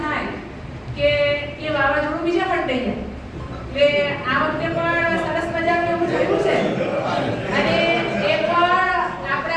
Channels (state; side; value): identical; both; correlation 1.00